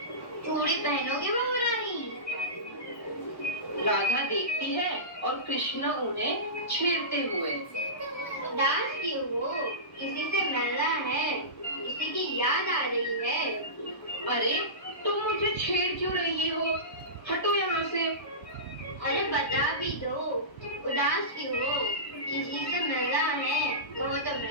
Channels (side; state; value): right; late; 1.1 ms